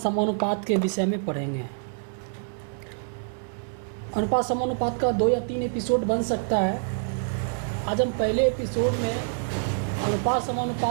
समानुपात के विषय में पढ़ेंगे। अनुपात समानुपात का 2 या 3 एपिसोड बन सकता है। आज हम पहले एपिसोड में अनुपात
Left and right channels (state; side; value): silent; left; digital silence